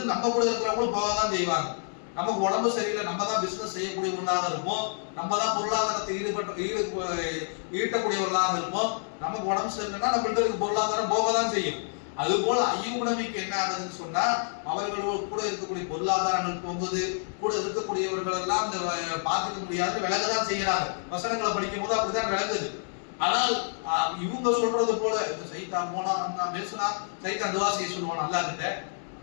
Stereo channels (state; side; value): silent; right; digital silence